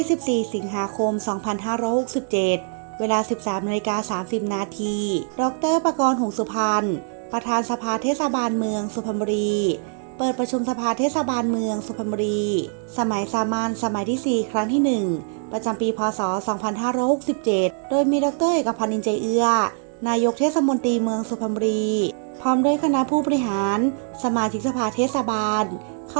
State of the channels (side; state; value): left; silent; 61 dB below the other